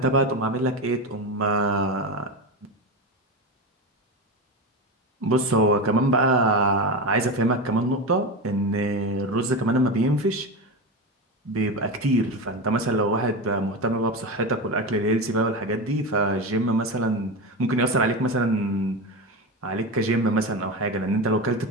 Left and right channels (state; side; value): normal; both; correlation 0.19